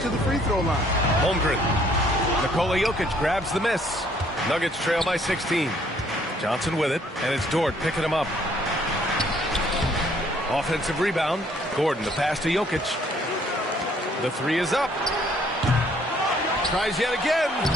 the free throw line. Holmgren. Nikola Jokic grabs the miss. Nuggets trail by 16. Johnson with it, and it's Dort picking him up. Offensive rebound. Gordon, the pass to Jokic. The 3 is up. Tries yet again.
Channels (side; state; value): both; normal; correlation 0.63